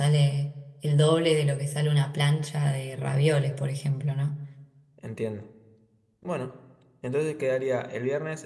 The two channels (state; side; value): identical; both; correlation 1.00